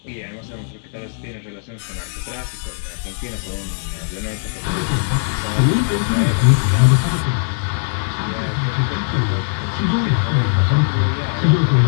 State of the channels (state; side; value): silent; right; digital silence